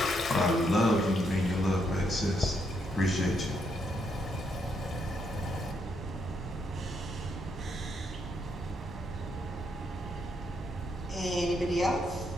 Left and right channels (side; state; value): both; normal; correlation 0.77